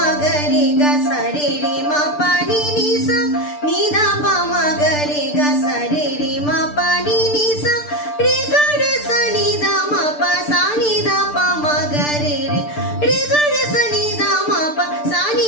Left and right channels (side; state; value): right; late; 6.8 ms